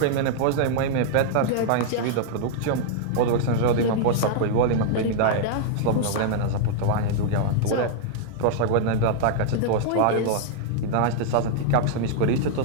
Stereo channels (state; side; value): different; both; correlation -0.01